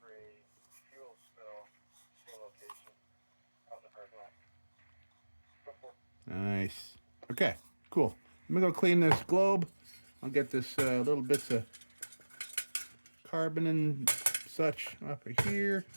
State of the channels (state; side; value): inverted; both; correlation -1.00